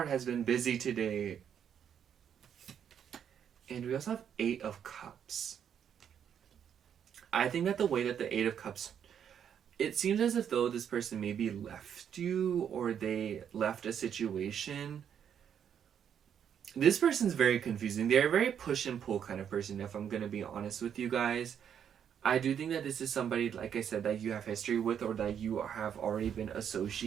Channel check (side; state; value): left; quieter; 8.5 dB